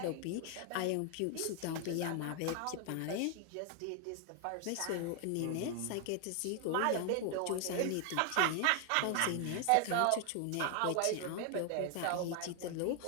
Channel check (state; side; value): different; both; correlation 0.00